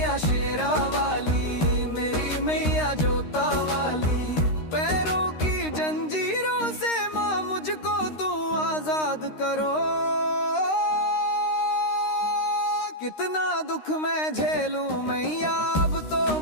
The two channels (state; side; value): late; right; 13 ms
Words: शेरा वाली, मेरी मैया जोता वाली। पैरों की जंजीरों से माँ मुझको तू आजाद करो। कितना दुख मैं झेलूं मैया, अब तो